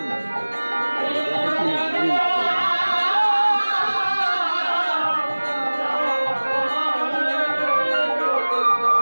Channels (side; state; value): both; inverted; correlation -1.00